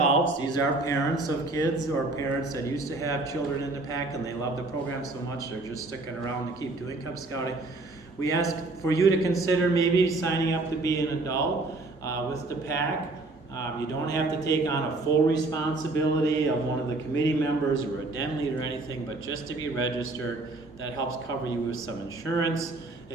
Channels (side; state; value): left; quieter; 3.1 dB